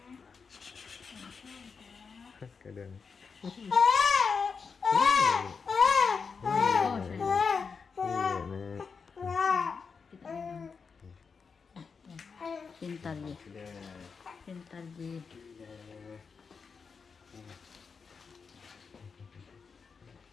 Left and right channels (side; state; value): right; quieter; 5.4 dB